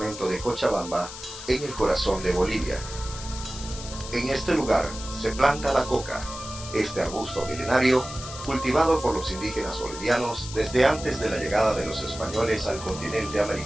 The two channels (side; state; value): left; noise; hiss, 12 dB below the sound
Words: de Cochabamba, en el corazón de Bolivia. En este lugar se planta la coca, este arbusto milenario cultivado por los indígenas bolivianos desde antes de la llegada de los españoles al continente